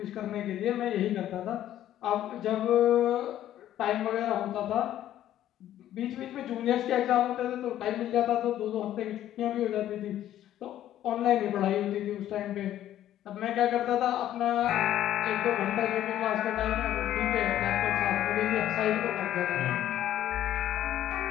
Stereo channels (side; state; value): right; quieter; 12.2 dB